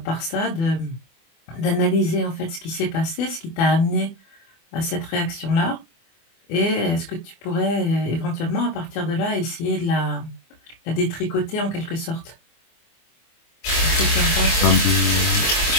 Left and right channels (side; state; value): right; late; 24 ms